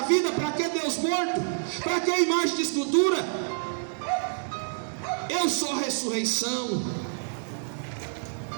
vida, para que Deus morto? Para que a imagem de escultura? Eu sou a ressurreição,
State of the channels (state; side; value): silent; left; 60 dB below the other